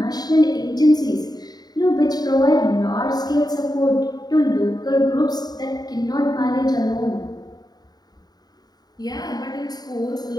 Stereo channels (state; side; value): late; right; 0.19 ms